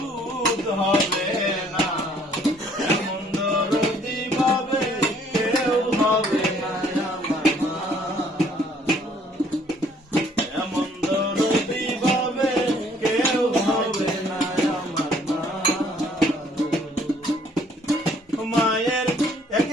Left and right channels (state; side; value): normal; both; correlation 0.61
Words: হবে না, এমন দরদি ভাবে কেউ হবে না আমার মা, এমন দরদি ভাবে কেউ হবে না আমার মা। মায়ের